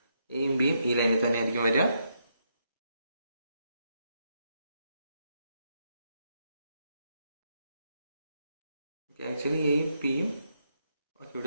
എയും ബിയും ഈ ലൈനിൽ തന്നെ ആയിരിക്കും വരിക. ആക്ച്വലി എയും പിയും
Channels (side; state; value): both; inverted; correlation -0.79